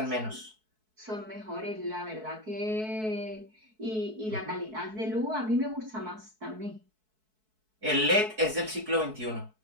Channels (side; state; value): left; late; 4.6 ms